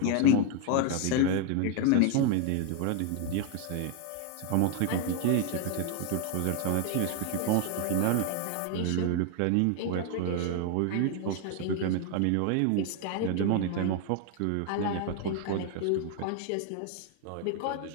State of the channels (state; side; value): different; both; correlation 0.00